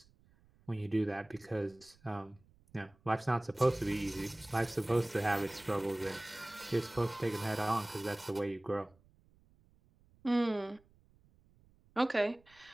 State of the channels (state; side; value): noise; right; rumble, 30 dB below the sound